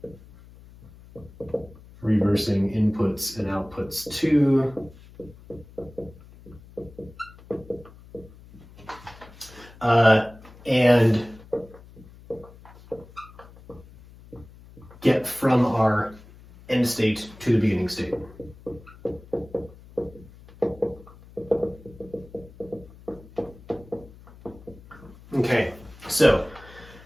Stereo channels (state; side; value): noise; left; hum, 21 dB below the sound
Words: reversing inputs and outputs to and get from our end state to the beginning state. Okay, so